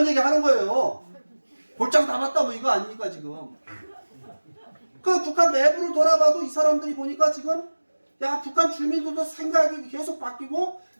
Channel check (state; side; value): inverted; both; correlation -1.00